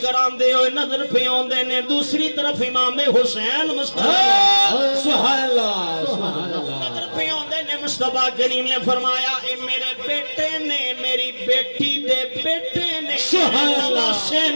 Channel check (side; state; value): both; inverted; correlation -1.00